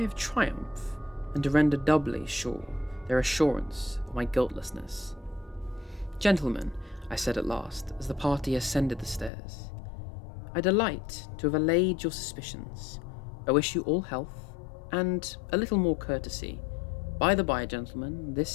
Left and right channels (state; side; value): drops out; right; at 9.3 s